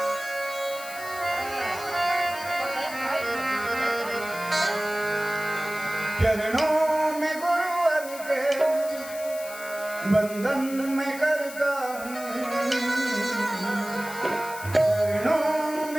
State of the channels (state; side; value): noise; left; hiss, 13 dB below the sound